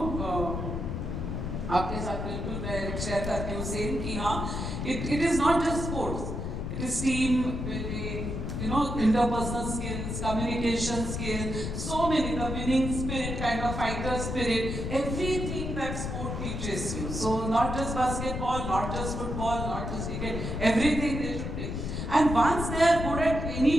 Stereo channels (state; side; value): noise; left; rumble, 4 dB below the sound